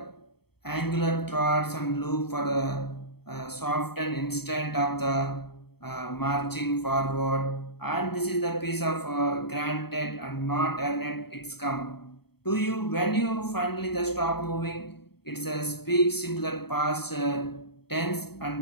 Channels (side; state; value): right; late; 0.96 ms